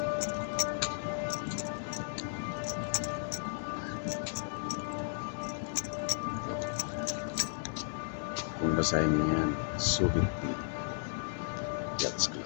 Kung basahin niyo yan, Subic P Yachts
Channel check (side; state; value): right; silent; 55 dB below the other